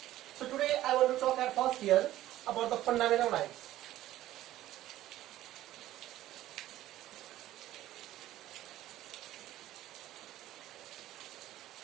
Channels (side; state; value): left; quieter; 14.3 dB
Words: So today I want to talk at first here about the fundamental rights.